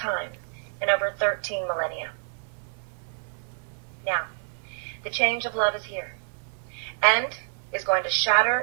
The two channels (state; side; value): silent; left; 60 dB below the other